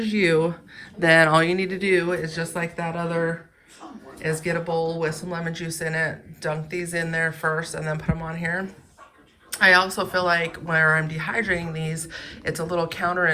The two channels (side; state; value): both; identical; correlation 1.00